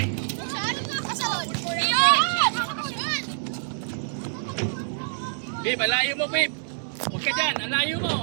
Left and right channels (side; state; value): left; silent; digital silence